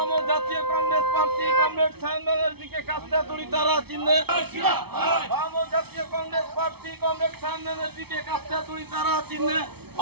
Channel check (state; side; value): late; left; 0.97 ms